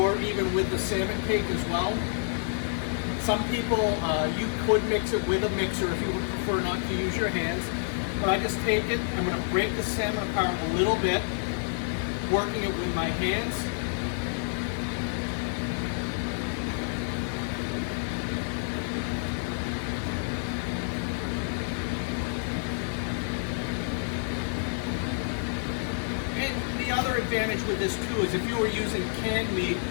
even with the salmon cake as well. Some people, you could mix it with a mixer if you would prefer not to use your hands. But I just take it, I'm going to break the salmon apart a little bit, working it with my hands. Advantage with this too is if you were using canned meat,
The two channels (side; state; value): right; silent; 59 dB below the other